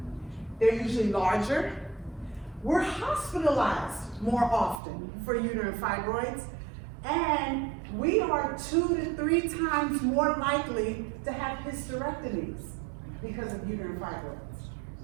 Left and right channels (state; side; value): drops out; left; at 4.8 s